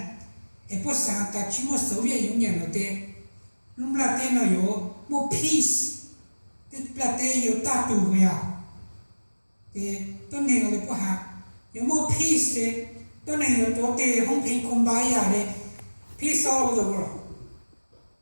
et bữa sáng ta chỉ một Soviet Union là thế lúc là thế nó có một peace thế là thế có ta tù rồi à thì tôi này là bữa hạt có một peace thế tôi này có tổ thế không phải công bài à đấy peace all over the world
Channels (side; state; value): both; inverted; correlation -1.00